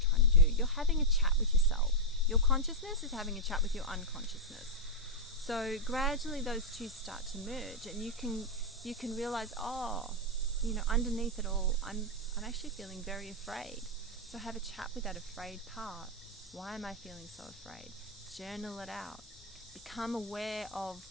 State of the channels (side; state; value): both; normal; correlation -0.02